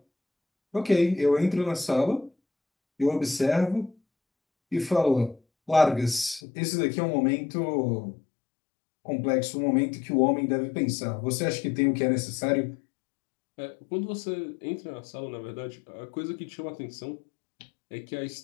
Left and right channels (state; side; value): drops out; right; at 6.4 s